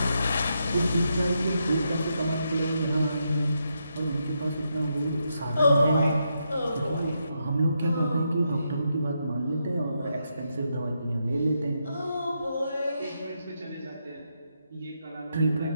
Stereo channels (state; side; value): inverted; both; correlation -0.82